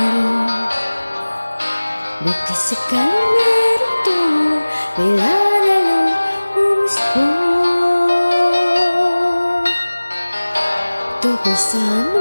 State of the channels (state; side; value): inverted; both; correlation -1.00